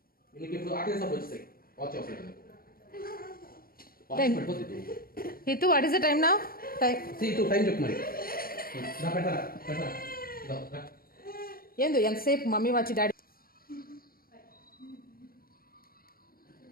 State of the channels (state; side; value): late; right; 0.43 ms